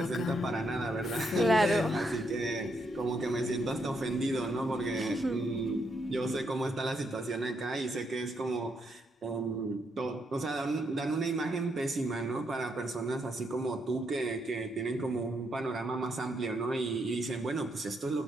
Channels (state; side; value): normal; both; correlation 0.77